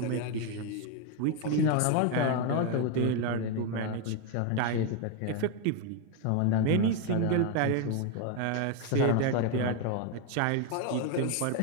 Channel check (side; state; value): both; different; correlation 0.01